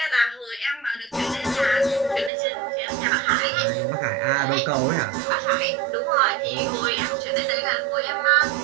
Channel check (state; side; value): drops out; left; at 2.3 s